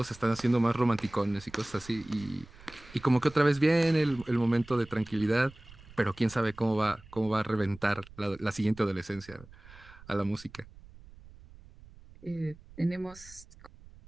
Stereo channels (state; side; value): noise; right; rumble, 21 dB below the sound